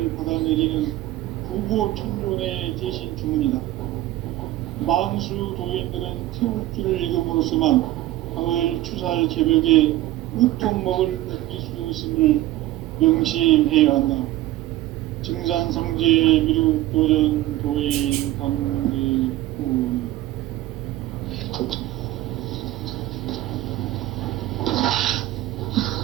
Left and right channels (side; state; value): left; quieter; 15.6 dB